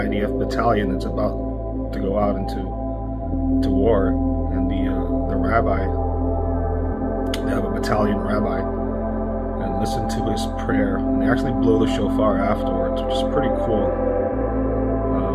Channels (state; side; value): identical; both; correlation 1.00